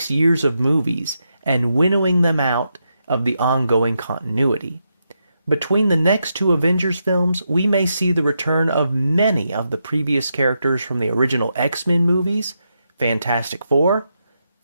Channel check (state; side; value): inverted; both; correlation -0.84